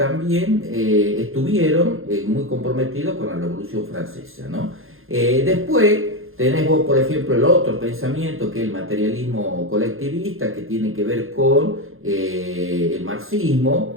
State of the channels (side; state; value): left; late; 0.60 ms